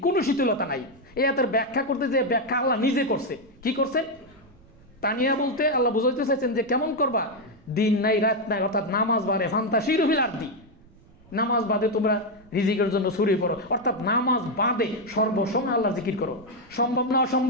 কোনো শিথিলতা নাই। এই আয়াতের ব্যাখ্যা করতে যে ব্যাখ্যা আল্লাহ নিজে করছে। কি করছেন? তানিয়া বলতে আল্লাহ বুঝাইতে চাইছেন যে কেমন করবা? দিন নাই রাত নাই, অর্থাৎ নামাজ বাদে ফান্তাশিরু ফিল আরদি, নামাজ বাদে তোমরা রিজিকের জন্য ছড়িয়ে পড়ো। অর্থাৎ নামাজ বাদে সর্বসময় আল্লাহর জিকির করো। সম্ভব না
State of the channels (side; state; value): right; noise; rumble, 27 dB below the sound